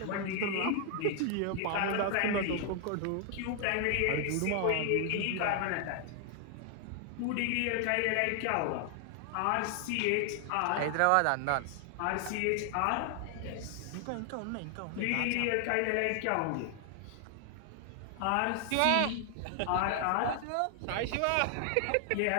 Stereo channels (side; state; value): both; different; correlation 0.00